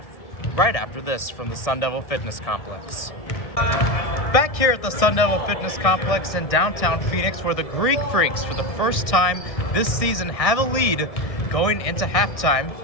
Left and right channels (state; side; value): late; right; 1.6 ms